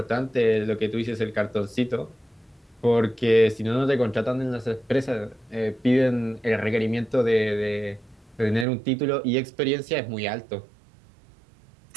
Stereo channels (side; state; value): left; drops out; at 8.7 s